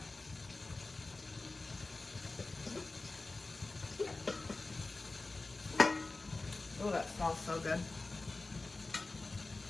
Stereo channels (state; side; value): quieter; right; 3.4 dB